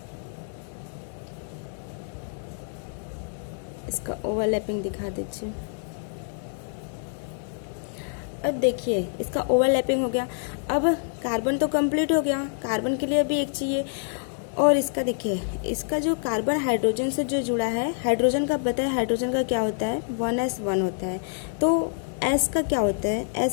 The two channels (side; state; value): right; silent; 60 dB below the other